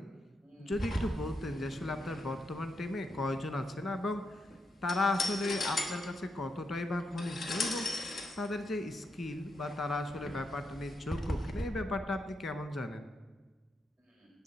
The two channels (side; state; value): both; normal; correlation 0.82